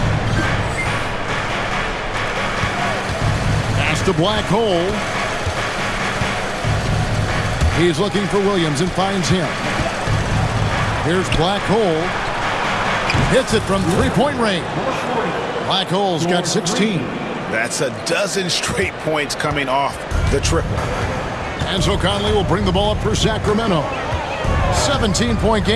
Pass to Black Hole. He's looking for Williams and finds him. Here's Black Hole. Hits it from three-point range. Black Hole's got 16. That's a dozen straight points coming off the triple. And so Conley will bring the ball up for Sacramento. 17-point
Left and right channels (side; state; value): both; identical; correlation 1.00